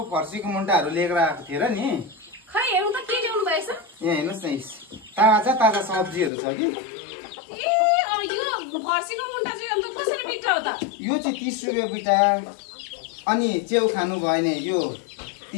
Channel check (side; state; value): right; drops out; at 6.3 s